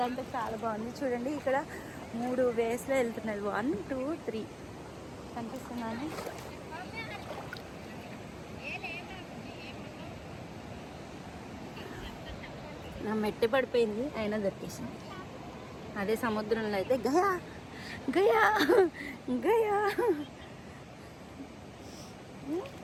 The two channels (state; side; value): identical; both; correlation 1.00